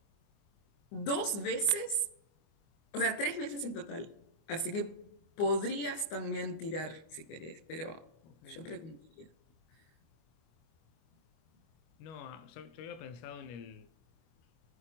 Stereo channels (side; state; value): right; late; 25 ms